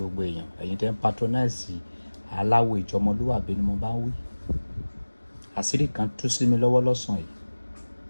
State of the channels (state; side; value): inverted; both; correlation -1.00